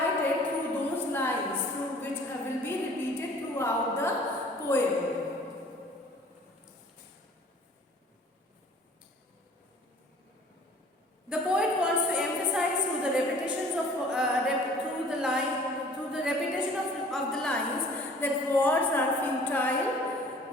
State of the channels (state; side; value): normal; both; correlation 0.51